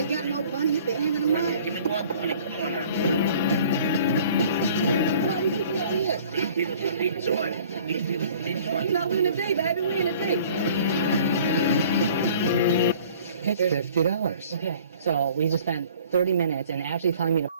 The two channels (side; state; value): both; inverted; correlation -0.51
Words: got no money. You been handing them money. Give me 120. Come on now. Look at all these people up here. These people need joy. These people need joy. You know, we in the day, baby. We in the day. It's $50. Okay, so we just spent 30 minutes and Ashley telling me to